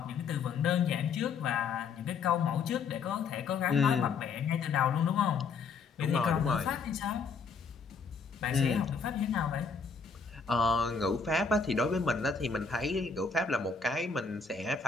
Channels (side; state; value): right; quieter; 5.3 dB